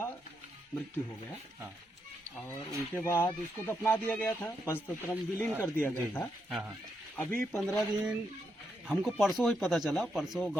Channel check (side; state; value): both; normal; correlation 0.81